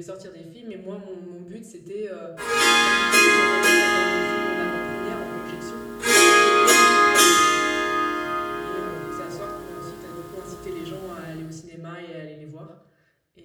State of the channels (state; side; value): identical; both; correlation 1.00